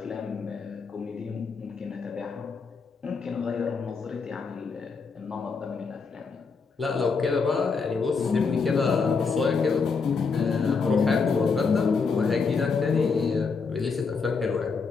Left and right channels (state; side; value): quieter; right; 5.0 dB